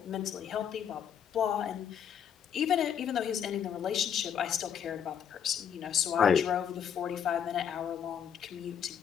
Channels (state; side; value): quieter; right; 8.3 dB